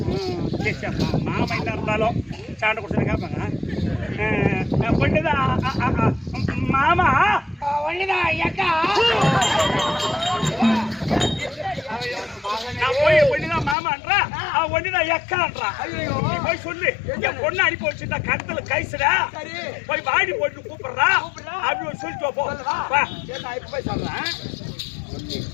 மாமா என்ன இருந்தாலும் சாண்டை குடிச்சு கேட்பாங்க மாமா ஒண்ணுதான் அக்கா நான் போய் ஒண்ணுதான் மாமான்றா ஒண்ணுதான் எக்கான்றா நீ போய் சொல்லு என் பொண்ணு அனுப்பி வச்சிருந்தா கருத்துல கைசுடா போய் வாடி போட்டு கூப்பிடுறா அப்படி ஒரு சொல்லிட்டு போ நான் இப்ப போய் சொல்றேன்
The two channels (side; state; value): right; drops out; at 13.8 s